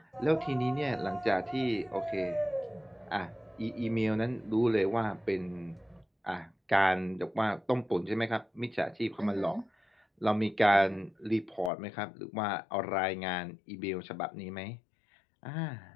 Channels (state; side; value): drops out; right; at 11.7 s